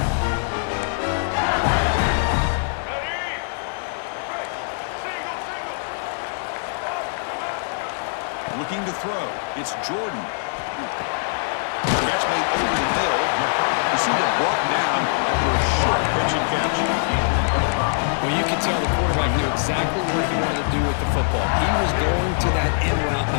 Looking to throw. It's Jordan. Catch made over the middle. You see it brought down after a short pitch and catch. Well, you can tell the quarterback knew exactly what he wanted to do with the football. He was going to that end route no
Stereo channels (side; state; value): right; silent; digital silence